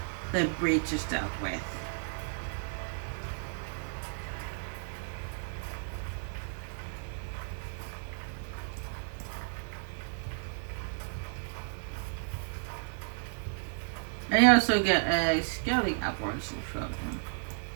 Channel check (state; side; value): silent; left; digital silence